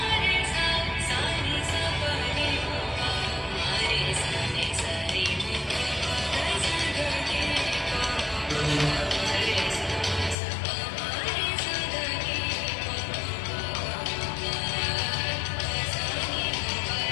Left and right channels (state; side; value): drops out; right; at 10.4 s